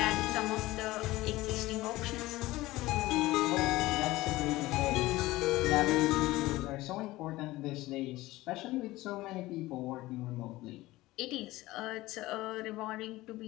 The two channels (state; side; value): quieter; right; 18.3 dB